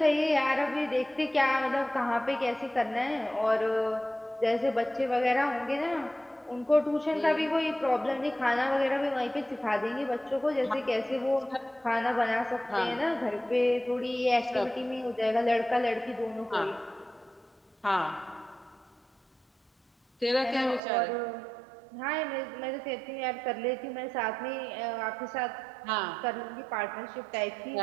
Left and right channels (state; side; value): drops out; left; at 20.8 s